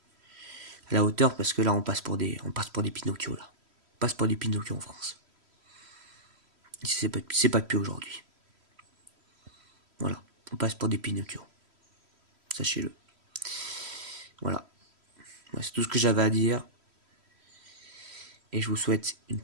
à la hauteur, parce que là, on passe pour des Pinocchio, là. On passe pour des Pinocchio en France. C'est pas depuis aujourd'hui. Voilà. On passe pour des Pinocchio. Sachez-le. Voilà. C'est tout ce que j'avais à dire. Et je vous souhaite une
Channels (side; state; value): left; late; 3.1 ms